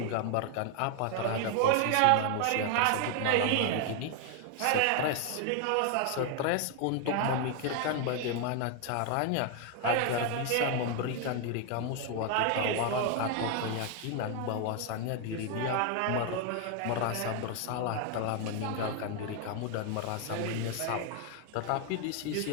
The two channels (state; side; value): different; both; correlation 0.01